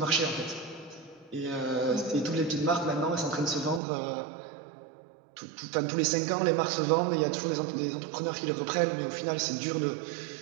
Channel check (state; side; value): drops out; left; at 3.8 s